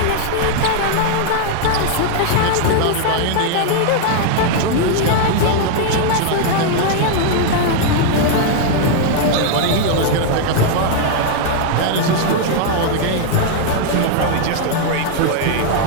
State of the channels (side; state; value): both; different; correlation 0.00